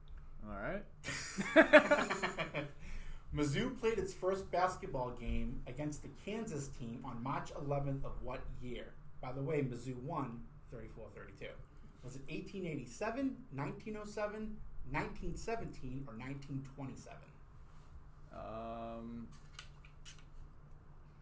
All right. Mizzou played its first basketball game against the Kansas team on March 11th of what year? By the way, Mizzou won 34-32. Was it 1887, 1907, 1917, or 1927?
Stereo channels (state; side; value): identical; both; correlation 1.00